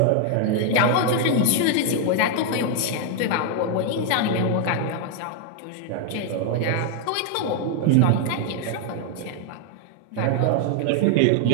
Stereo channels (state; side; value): different; both; correlation 0.00